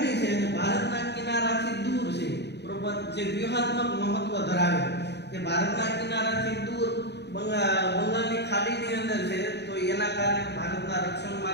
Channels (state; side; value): late; right; 0.49 ms